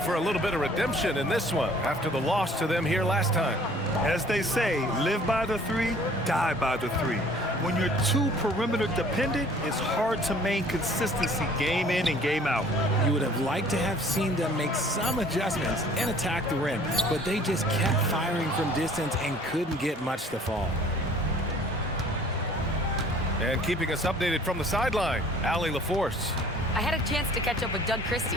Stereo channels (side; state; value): both; normal; correlation 0.53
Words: a little bit of redemption in this one after the loss to them here last time. As they say, live by the 3, die by the 3. When you're too perimeter dependent, it's hard to maintain consistency game in and game out. You would have liked to have seen them make some adjustments and attack the rim, but they just kept firing from distance and couldn't get much to fall. And keeping us updated from the sideline, Allie LaForce. I had a chance to catch up with Doug Christie.